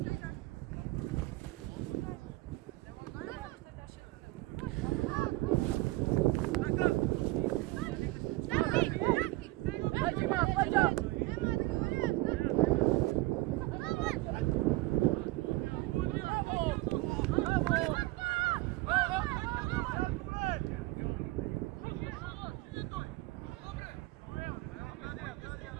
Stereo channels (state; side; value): quieter; left; 20.4 dB